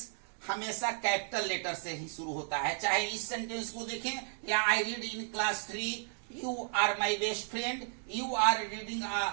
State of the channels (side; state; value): left; silent; 55 dB below the other